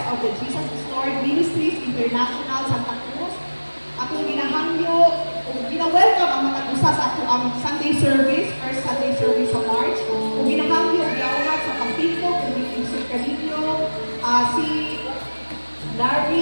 of the Jesus Restored Ministries International Santa Cruz, akong ginahangyo o gina-welcome ang matagusa sa ato ang Sunday service, first Sunday service sa March. Kung ginahangyo, ginaunat sa Pampito, kung inisip ka ninyo, si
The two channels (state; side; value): inverted; both; correlation -1.00